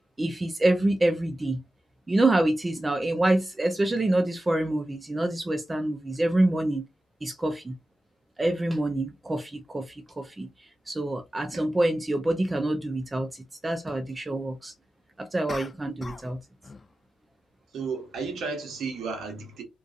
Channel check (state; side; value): normal; both; correlation 0.94